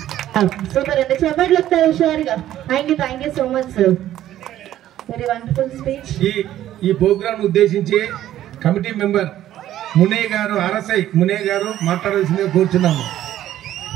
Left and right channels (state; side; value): quieter; left; 12.7 dB